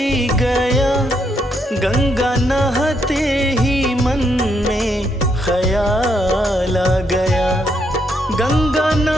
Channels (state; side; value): normal; both; correlation 0.76